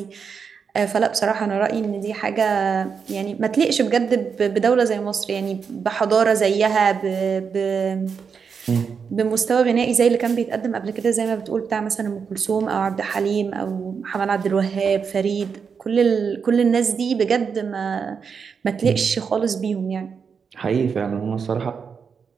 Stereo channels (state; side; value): quieter; left; 6.1 dB